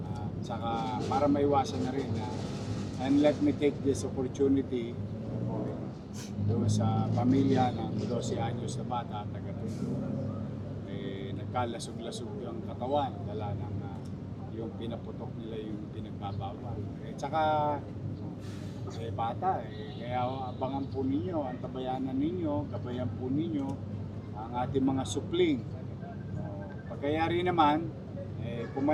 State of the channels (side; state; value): both; identical; correlation 1.00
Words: Saka para maiwasan na rin and let me take this opportunity doon sa pamilya ng 12 anyos na bata, taga-Tondo. Nagkalasog-lasog ang katawan, dala ng yung pinaputok nila yung pinagbabawal. Tsaka, bata, kaya abangan po ninyo, ang tabayanan ninyo, gabayan po ninyo ang ating mga supling. Pagkayari naman, kung